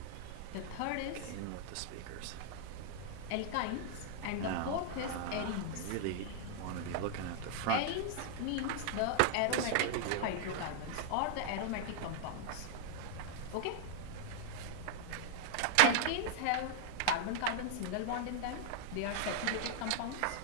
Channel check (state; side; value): different; both; correlation -0.01